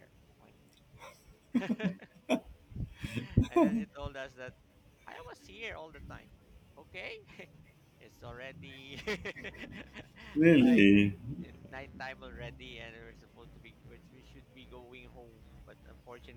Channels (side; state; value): both; identical; correlation 1.00